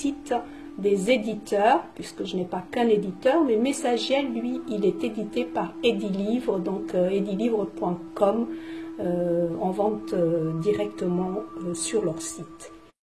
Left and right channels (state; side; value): identical; both; correlation 1.00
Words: des éditeurs, puisque je n'ai pas qu'un éditeur, mais Messagiel, lui, il est édité par Edilivre, donc edilivre.com, en vente directement sur leur site.